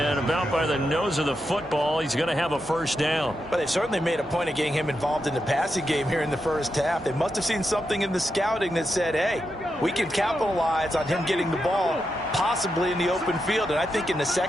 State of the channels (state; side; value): noise; left; hum, 27 dB below the sound